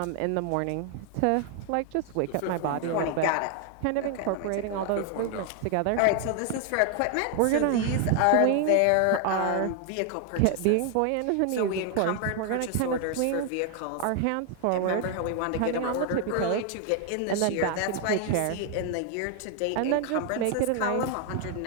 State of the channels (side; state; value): both; different; correlation 0.00